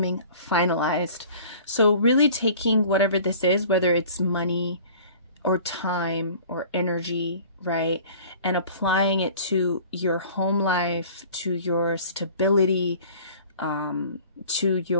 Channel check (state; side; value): inverted; both; correlation -0.47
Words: finalized. So really taking whatever this is, whether it's money or time or energy, right, and applying it to your home life, to your stability, to